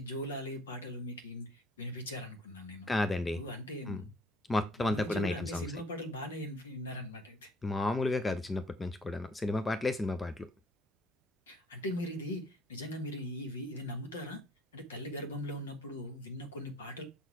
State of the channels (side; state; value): both; normal; correlation 0.59